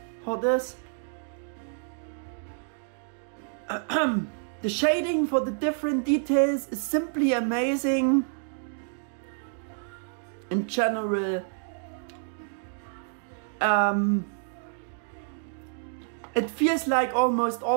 for this. The shading for the different details is simply amazing. In general, it feels like almost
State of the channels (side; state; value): left; silent; digital silence